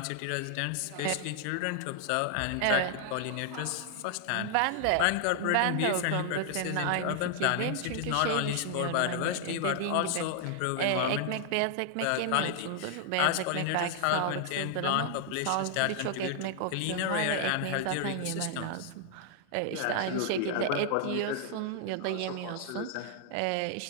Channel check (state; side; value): different; both; correlation -0.01